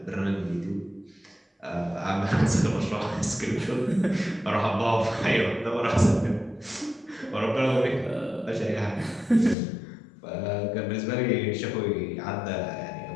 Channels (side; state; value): right; drops out; at 9.6 s